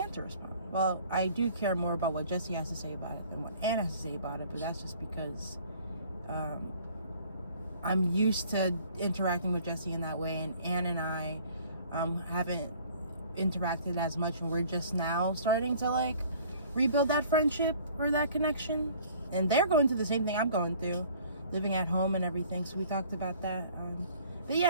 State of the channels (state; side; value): inverted; both; correlation -0.53